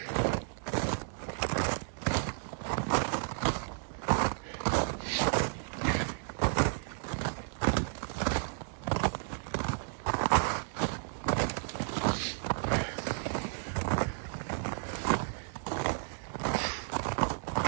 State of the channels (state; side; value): silent; left; digital silence